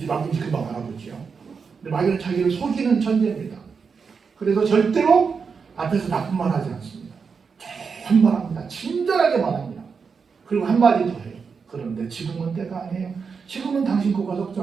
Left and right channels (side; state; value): left; quieter; 5.6 dB